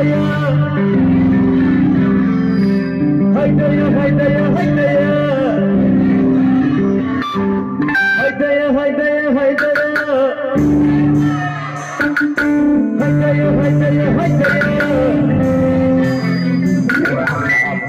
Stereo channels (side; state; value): both; identical; correlation 1.00